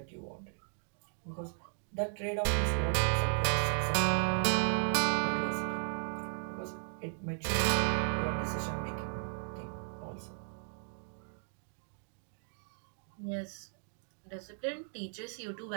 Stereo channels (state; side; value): silent; left; digital silence